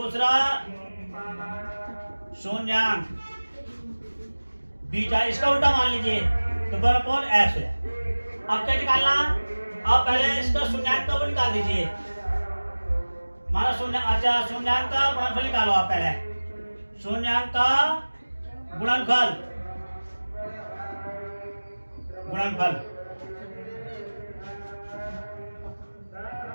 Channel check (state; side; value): inverted; both; correlation -1.00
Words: शून्यांक बीटा, इसका उल्टा मान लीजिए तो 1/x हो जाए। अब क्या निकालना, अब पहले इसका शून्यांक का वो निकाल दीजिए, माना शून्य, अच्छा शून्यांक का गुणनफल निकालो आप पहले, शून्यांक का गुणनफल